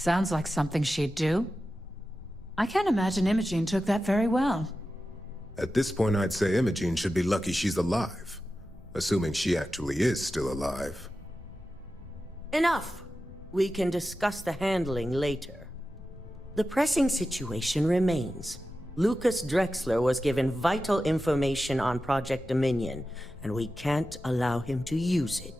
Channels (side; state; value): both; normal; correlation 0.92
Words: like something she'd do. I can't imagine Imogene took that very well. At this point, I'd say Imogene should be lucky she's alive. Assuming she actually is still alive. Enough! We can discuss the handling later. The pressing situation remains. Lucas Drexler was given vital information on Project Dominion, and we can't allow him to use